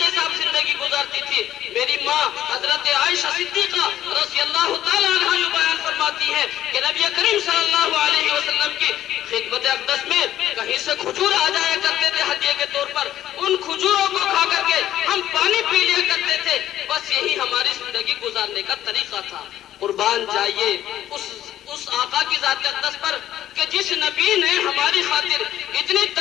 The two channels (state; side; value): quieter; right; 12.4 dB